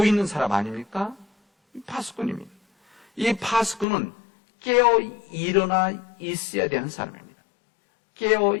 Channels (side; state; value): right; drops out; at 3.9 s